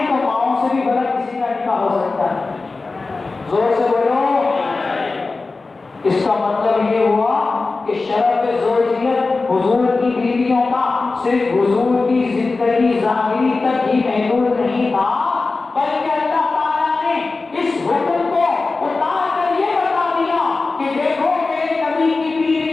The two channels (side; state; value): right; quieter; 3.7 dB